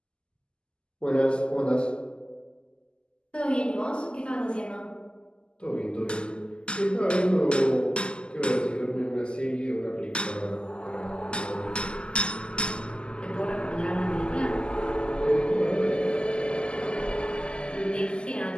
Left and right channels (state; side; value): late; right; 0.049 ms